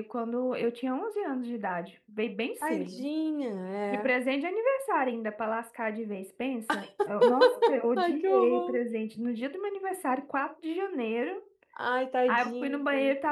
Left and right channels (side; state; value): both; identical; correlation 1.00